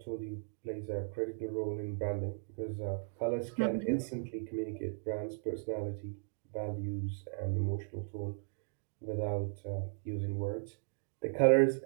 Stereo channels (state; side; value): silent; left; digital silence